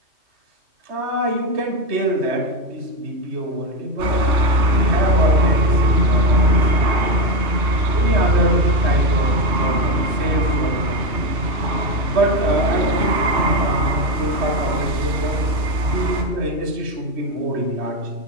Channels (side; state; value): left; late; 2.6 ms